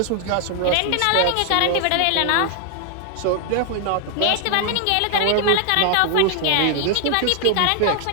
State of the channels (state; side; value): different; both; correlation 0.00